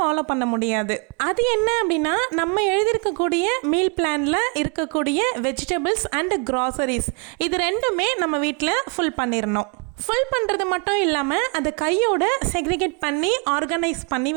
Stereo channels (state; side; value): quieter; left; 35.8 dB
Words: பண்ண முடியாது. அது என்ன அப்படின்னா, நம்ம எழுதியிருக்கக்கூடிய மீல் பிளானில் இருக்கக்கூடிய வெஜிடபிள்ஸ் அண்ட் க்ராசரிஸ் இது ரெண்டுமே நம்ம வீட்டில் ஃபுல் பண்ணிடணும். ஃபுல் பண்ணுறது மட்டும் இல்லாமல் அதை கையோட செக்ரிகேட் பண்ணி ஆர்கனைஸ் பண்ணி